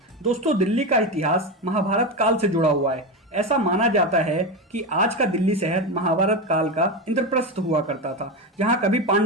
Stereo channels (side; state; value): both; normal; correlation 0.17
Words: दोस्तों, दिल्ली का इतिहास महाभारत काल से जुड़ा हुआ है। ऐसा माना जाता है कि आज का दिल्ली शहर महाभारत काल का इंद्रप्रस्थ हुआ करता था, जहां कभी